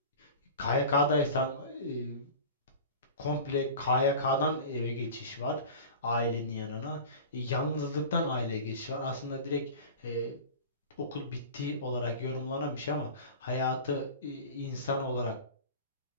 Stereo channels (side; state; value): both; inverted; correlation -0.35